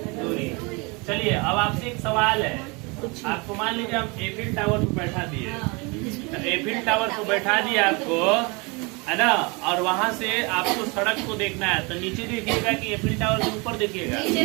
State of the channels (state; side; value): quieter; left; 28.8 dB